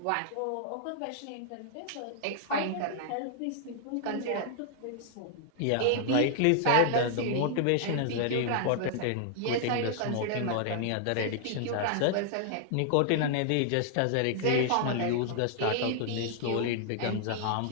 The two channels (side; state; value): both; different; correlation -0.01